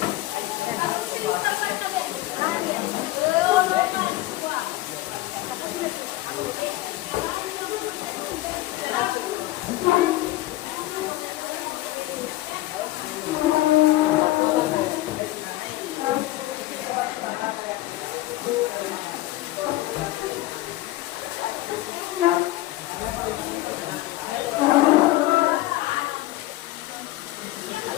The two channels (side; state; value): right; quieter; 17.1 dB